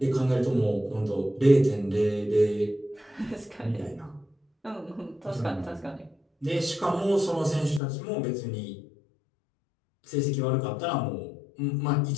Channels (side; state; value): right; drops out; at 7.8 s